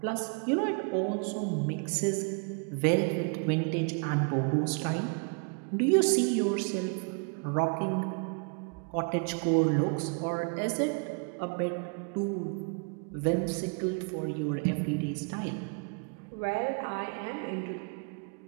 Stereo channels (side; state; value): left; quieter; 37.2 dB